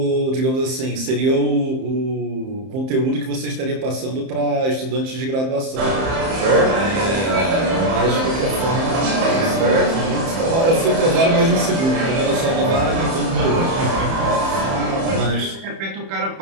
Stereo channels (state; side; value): late; left; 31 ms